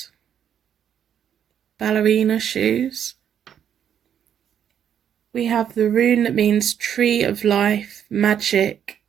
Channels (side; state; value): left; quieter; 9.0 dB